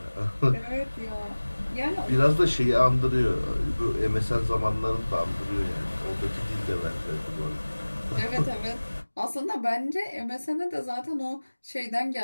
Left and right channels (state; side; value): inverted; both; correlation -1.00